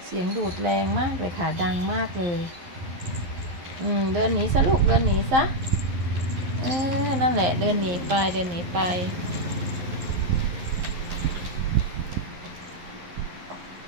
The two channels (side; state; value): left; late; 11 ms